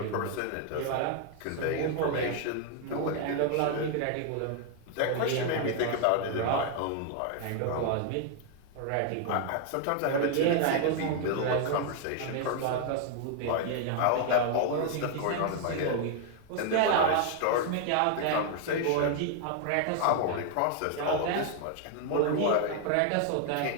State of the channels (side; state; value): both; different; correlation 0.00